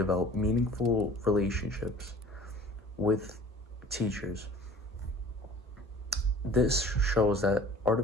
meaningful relationships with teachers. This shows that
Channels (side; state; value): both; normal; correlation 0.45